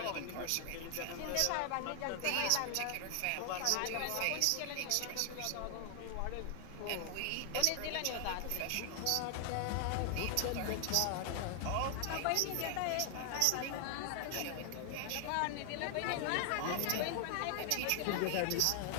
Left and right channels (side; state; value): both; different; correlation 0.00